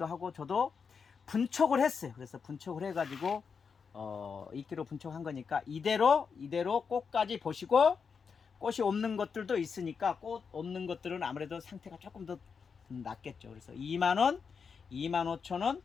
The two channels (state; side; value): quieter; right; 5.9 dB